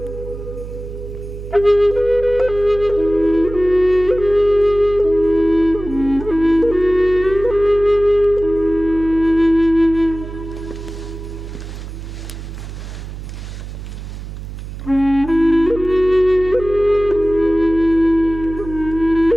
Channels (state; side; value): noise; right; hum, 11 dB below the sound